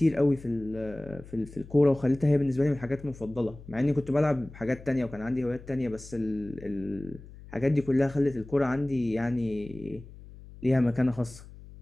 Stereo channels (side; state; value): left; noise; hum, 18 dB below the sound